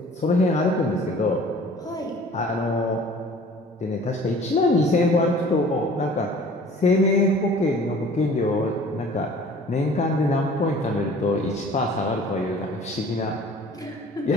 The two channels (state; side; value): normal; both; correlation 0.48